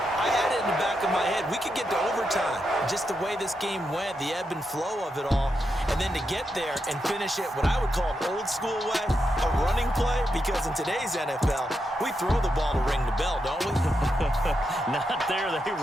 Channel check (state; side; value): normal; both; correlation 0.84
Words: I had it in the back of my head. We could get to overtime. Just the way this game went, the ebb and flow of it all. And then to get there and finish it what I would call an old school way, a running play, because in today's NFL, we throw the ball to ring the bell, don't we? Not there. They